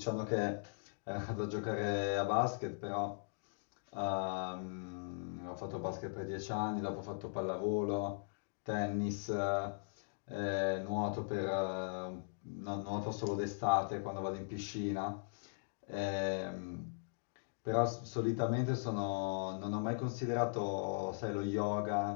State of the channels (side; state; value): right; silent; digital silence